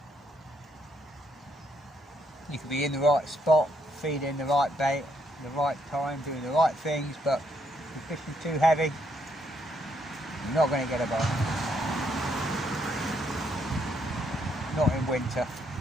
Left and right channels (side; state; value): both; normal; correlation 0.74